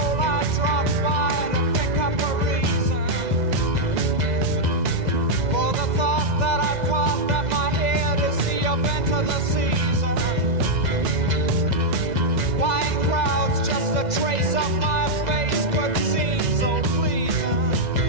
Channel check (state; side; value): late; left; 2.0 ms